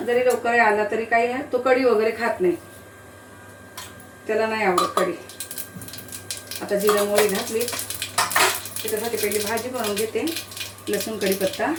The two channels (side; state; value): both; identical; correlation 1.00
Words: जरी लवकर आला तरी काही तो कढी वगैरे खात नाही, त्याला नाही आवडत कढी. आता जिरा मोहरी घातली, त्याच्यासाठी पहिली भाजी बनवून घेते. लसूण कढीपत्ता